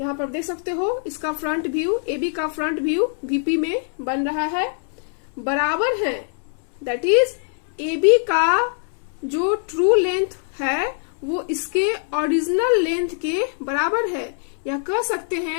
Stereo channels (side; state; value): right; silent; 64 dB below the other